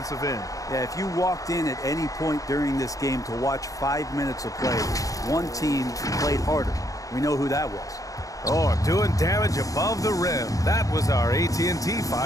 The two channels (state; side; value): late; right; 0.17 ms